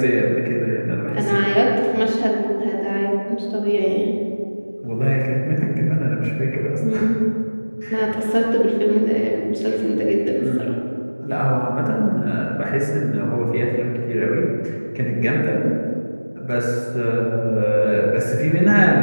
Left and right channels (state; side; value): inverted; both; correlation -1.00